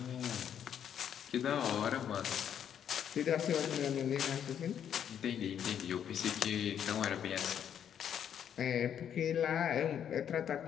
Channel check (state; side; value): quieter; right; 9.0 dB